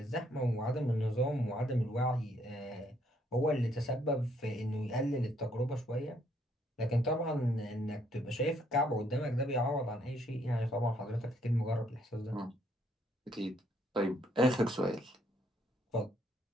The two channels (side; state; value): both; normal; correlation 0.69